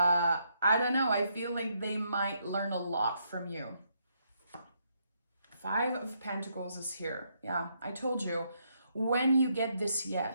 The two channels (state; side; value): inverted; both; correlation -0.75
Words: don't know, I feel like they might learn a lot from you. 5 of Pentacles is here. Yeah, I told you, when you get this